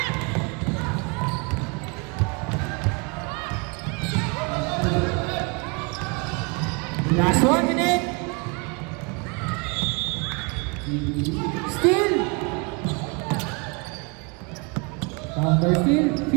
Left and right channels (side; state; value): left; quieter; 30.9 dB